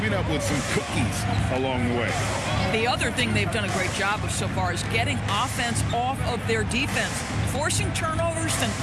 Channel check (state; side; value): identical; both; correlation 1.00